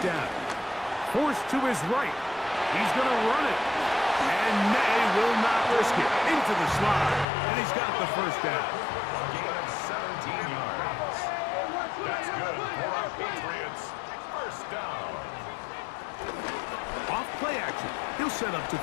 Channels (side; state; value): right; drops out; at 7.2 s